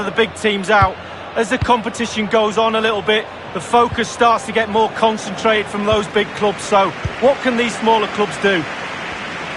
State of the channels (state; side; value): identical; both; correlation 1.00